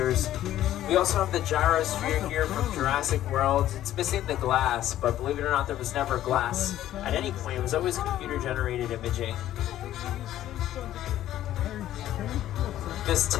We also have the gyrosphere here from Jurassic World. It's missing the glass, but believe it or not, there was never glass at any point. It was always computer-generated imaging. This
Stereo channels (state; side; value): quieter; right; 12.9 dB